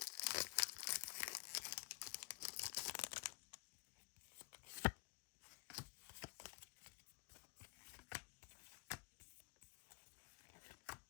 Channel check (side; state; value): right; quieter; 29.5 dB